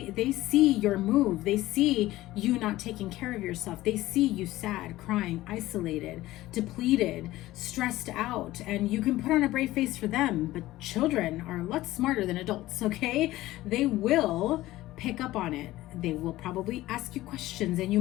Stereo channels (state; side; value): quieter; right; 16.7 dB